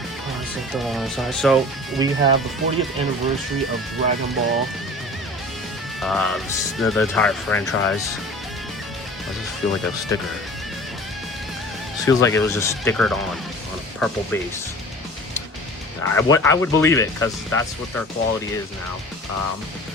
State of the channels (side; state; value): both; normal; correlation 0.42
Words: let's take the long side. So we have the 40th anniversary of Dragon Ball. The entire franchise. I just feel like a sticker. This feels like it was just stickered on a purple base. I would believe it, because that's what their quality is now.